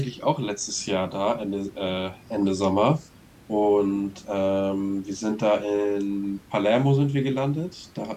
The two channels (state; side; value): identical; both; correlation 1.00